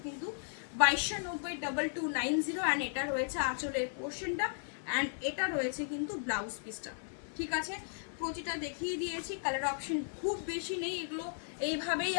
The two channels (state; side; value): silent; right; 54 dB below the other